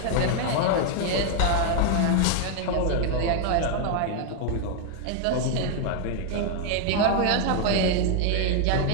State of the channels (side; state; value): both; different; correlation 0.00